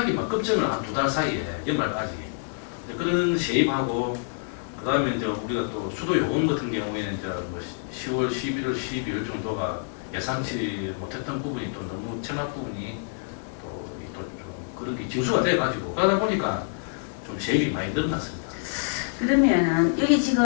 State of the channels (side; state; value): right; silent; 60 dB below the other